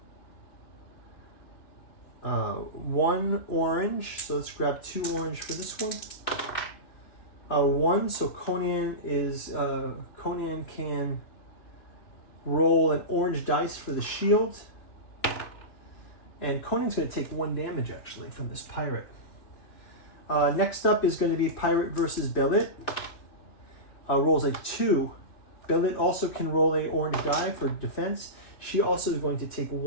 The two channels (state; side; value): late; right; 2.9 ms